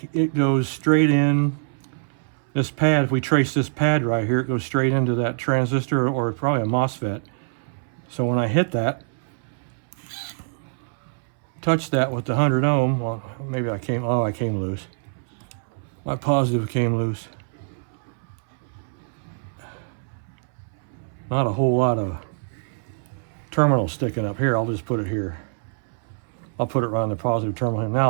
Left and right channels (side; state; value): left; silent; 62 dB below the other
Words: it goes straight in this pad. If we trace this pad right here, it goes straight into that transistor, or probably a MOSFET. So when I hit that, touch that with the 100 ohm, well, maybe I came loose. My positive came loose. Not a whole lot of terminal sticking up here. I'll just put it here. I'll put it around the positive terminal. Now